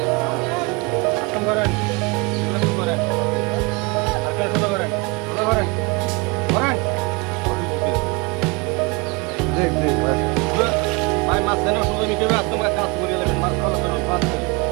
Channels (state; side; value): quieter; left; 27.9 dB